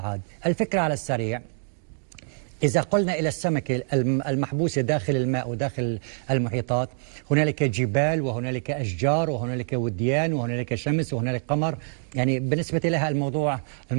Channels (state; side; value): silent; left; digital silence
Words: الفكرة على السريع، إذا قلنا إلى السمكة المحبوسة داخل الماء وداخل المحيطات، هنالك جبال وهنالك أشجار وهنالك وديان وهنالك شمس وهنالك قمر، يعني بالنسبة لها